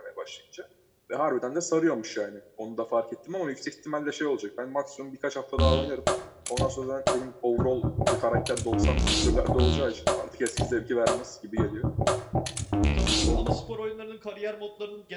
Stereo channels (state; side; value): identical; both; correlation 1.00